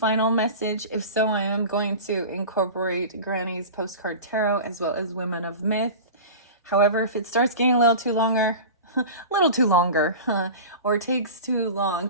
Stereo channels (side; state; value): both; inverted; correlation -0.33